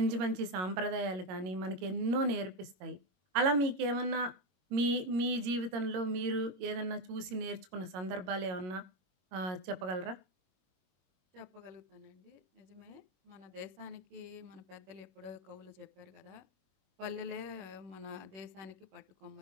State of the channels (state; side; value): late; left; 21 ms